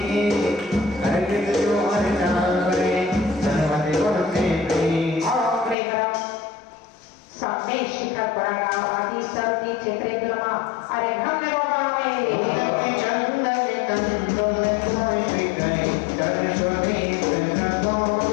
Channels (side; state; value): right; drops out; at 5.8 s